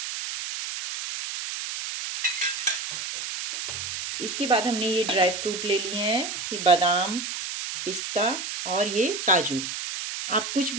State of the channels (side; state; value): right; noise; hiss, 5 dB below the sound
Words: इसके बाद हमने ये ड्राई फ्रूट ले लिए हैं, ये बादाम, पिस्ता और ये काजू। आप कुछ